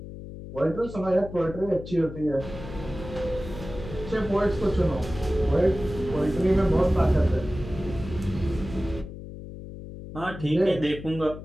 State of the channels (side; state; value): left; noise; hum, 12 dB below the sound